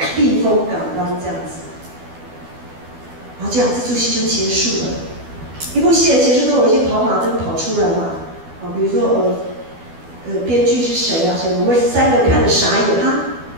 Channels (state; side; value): late; left; 12 ms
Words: 避风港湾这样子。然后这样这出戏就结束了。一部戏的结束都有一些跑马灯跑出来嘛，比如说编剧是谁啊？谁？我们3个看着傻眼啊，